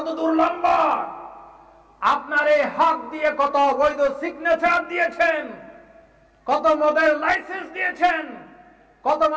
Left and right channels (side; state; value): both; identical; correlation 1.00